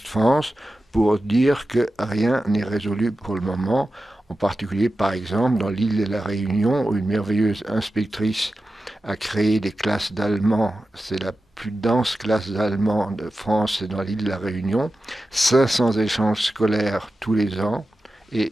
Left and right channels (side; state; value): both; normal; correlation 0.93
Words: France pour dire que rien n'est résolu pour le moment. En particulier, par exemple, dans l'île de la Réunion, où une merveilleuse inspectrice a créé des classes d'allemand. C'est la plus dense classe d'allemand de France, c'est dans l'île de la Réunion. 500 échanges scolaires tous les ans. Et